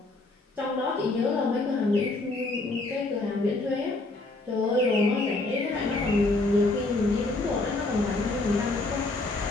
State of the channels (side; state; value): right; quieter; 3.1 dB